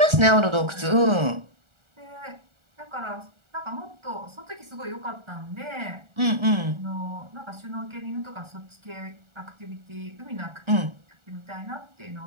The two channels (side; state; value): left; late; 1.4 ms